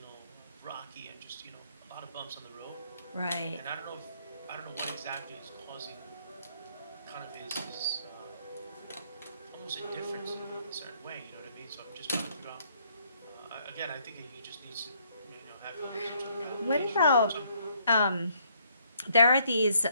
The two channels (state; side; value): inverted; both; correlation -0.68